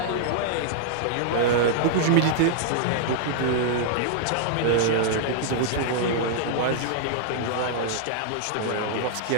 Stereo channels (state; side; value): different; both; correlation -0.01